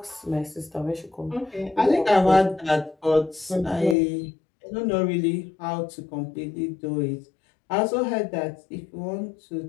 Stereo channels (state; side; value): drops out; right; at 4.0 s